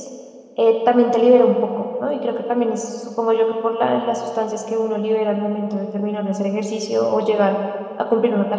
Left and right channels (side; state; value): both; identical; correlation 1.00